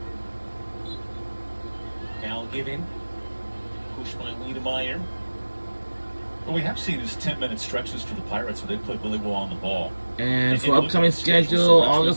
Given, pushed by Wiedemeyer. What we have seen is 10-minute stretches for the Pirates where they play really well on the ball. And for upcoming schedule,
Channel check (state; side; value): inverted; both; correlation -1.00